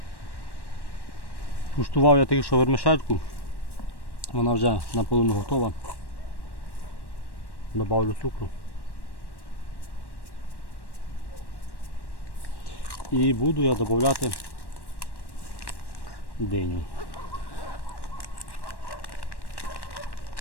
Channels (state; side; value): late; right; 1.1 ms